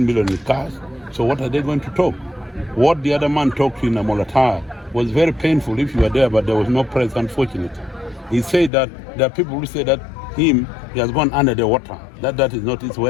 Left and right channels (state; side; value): drops out; right; at 8.7 s